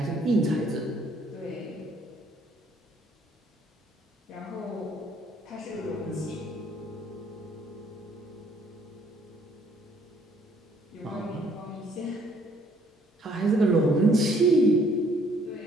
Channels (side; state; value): both; normal; correlation 0.63